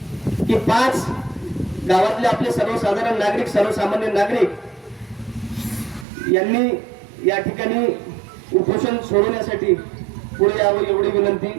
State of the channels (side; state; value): left; drops out; at 6.1 s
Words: की 5 गावातले आपले सर्वसाधारण नागरिक, सर्वसामान्य नागरिक यांनी या ठिकाणी उपोषण सोडवण्यासाठी पुढे यावं एवढी विनंती